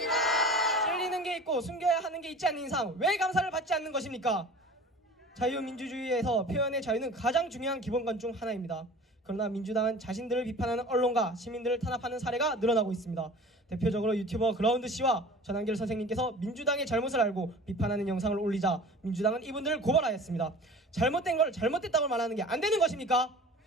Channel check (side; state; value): both; normal; correlation 0.42